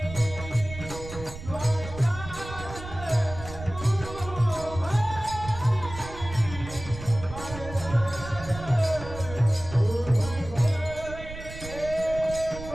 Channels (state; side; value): noise; right; rumble, 12 dB below the sound